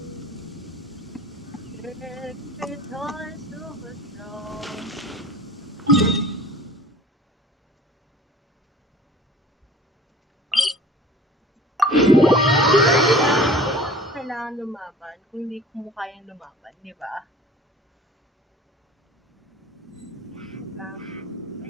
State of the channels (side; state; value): both; normal; correlation 0.45